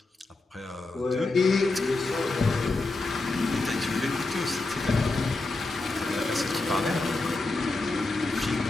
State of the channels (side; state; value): right; quieter; 3.2 dB